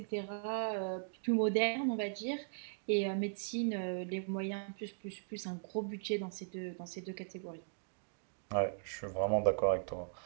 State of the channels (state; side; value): silent; left; digital silence